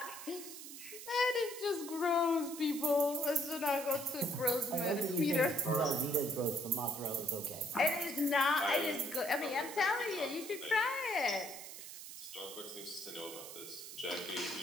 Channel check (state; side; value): noise; right; hiss, 11 dB below the sound